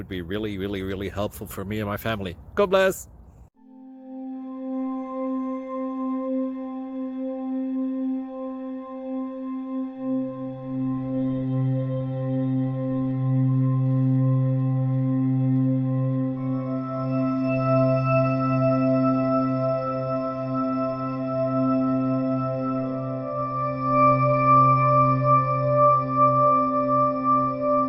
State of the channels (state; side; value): identical; both; correlation 1.00